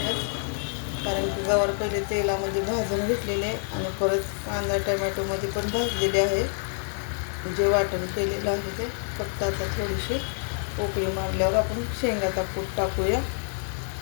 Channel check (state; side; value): silent; right; digital silence